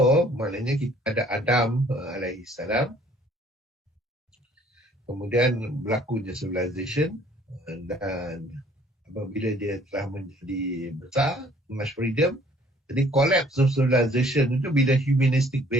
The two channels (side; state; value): both; normal; correlation 0.58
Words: maknanya kita ada Adam alaihi salam, kemudian berlakunya civilization, dan apabila dia telah menjadi besar, much freedom. Jadi collapse of civilization itu bila humanistic